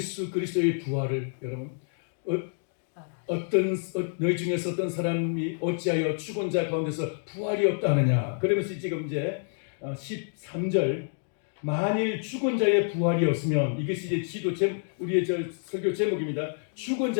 그리스도의 부활을 여러분 너희 중에서 어떤 사람이 어찌하여 죽은 자 가운데서 부활이 없다 하느냐. 그러면서 지금 이제 13절 만일 죽은 자의 부활이 없으면 이것이 이제 우리의 설교 제목입니다. 죽은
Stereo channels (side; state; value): right; silent; 59 dB below the other